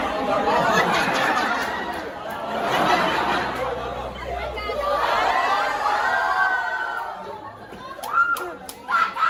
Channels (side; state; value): both; identical; correlation 1.00